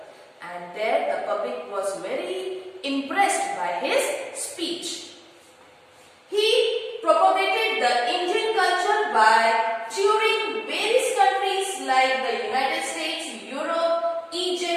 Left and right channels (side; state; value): both; identical; correlation 1.00